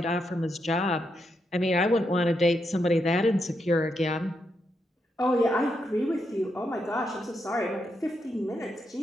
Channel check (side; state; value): both; normal; correlation 0.82